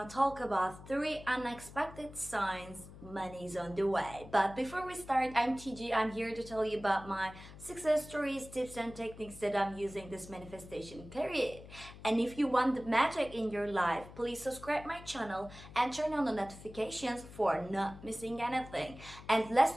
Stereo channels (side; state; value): left; noise; hum, 16 dB below the sound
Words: talk about 3 unexpected signs money's on the way. But before we start, I'm TG. I'm here to tell you about my success stories, tips and techniques that I'm using this manifestation period. And if you want the magic in your life, please subscribe my channel and turn on the notifications for not missing anything. And